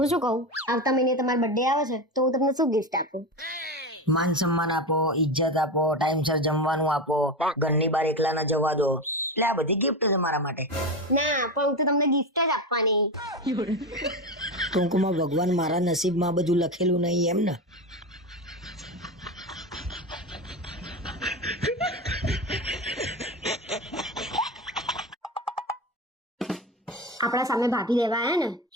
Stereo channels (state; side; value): normal; both; correlation 0.20